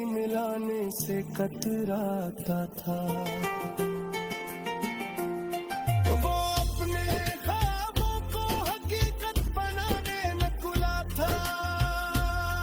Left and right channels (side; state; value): both; identical; correlation 1.00